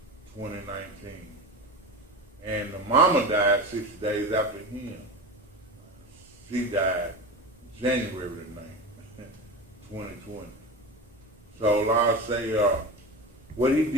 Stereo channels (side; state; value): both; normal; correlation 0.27